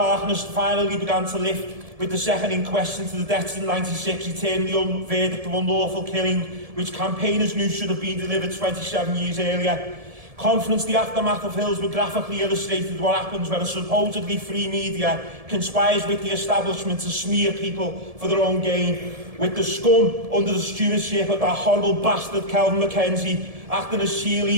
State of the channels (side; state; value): left; late; 1.7 ms